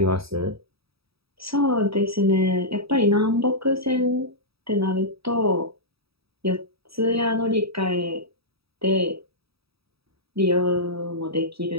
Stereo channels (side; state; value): left; late; 0.77 ms